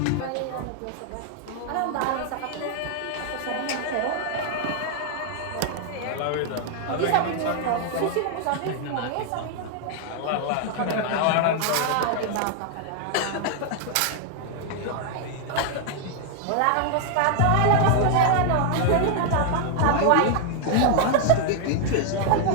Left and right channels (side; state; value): both; different; correlation 0.00